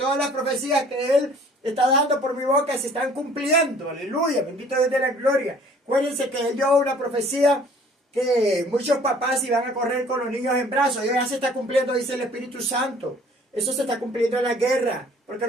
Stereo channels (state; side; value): normal; both; correlation 0.54